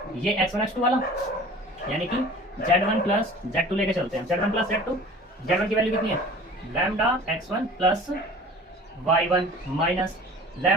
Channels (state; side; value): normal; both; correlation 0.43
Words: ये x1 x2 वाला, यानी कि z1 प्लस z2 लेके चलते हैं, z1 प्लस z2, z1 की वैल्यू कितनी है lambda x1 plus y1 minus